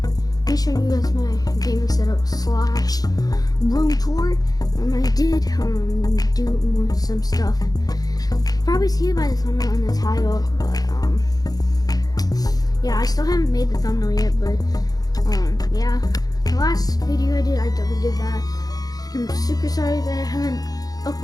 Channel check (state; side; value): late; right; 0.18 ms